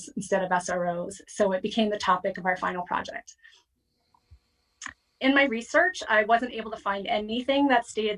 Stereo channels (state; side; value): identical; both; correlation 1.00